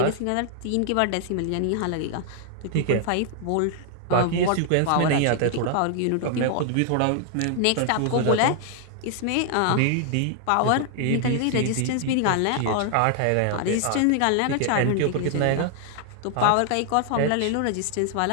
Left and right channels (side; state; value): both; different; correlation 0.00